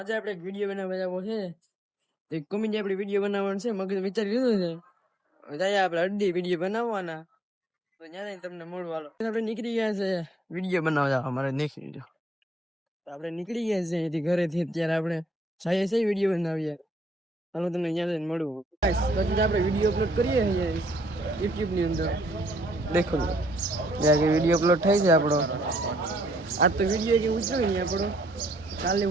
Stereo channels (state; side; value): normal; both; correlation 0.70